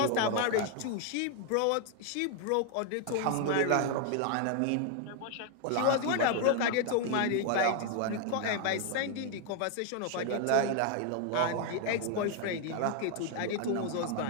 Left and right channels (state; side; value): different; both; correlation 0.00